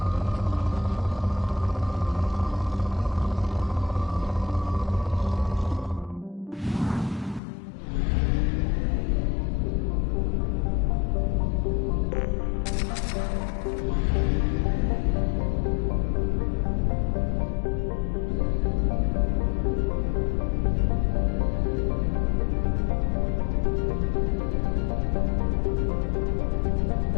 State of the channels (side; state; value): right; drops out; at 7.4 s